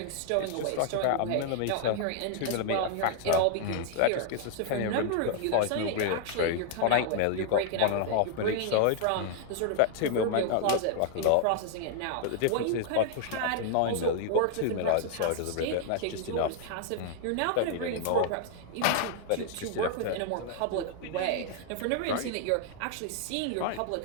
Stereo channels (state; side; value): different; both; correlation 0.00